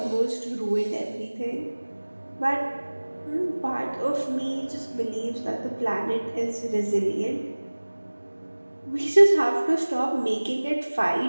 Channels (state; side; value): inverted; both; correlation -1.00